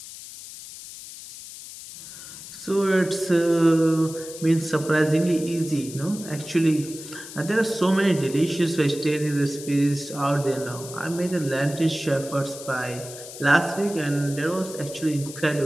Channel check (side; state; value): left; noise; hiss, 13 dB below the sound